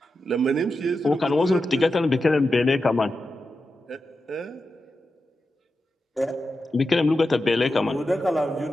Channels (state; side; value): normal; both; correlation 0.90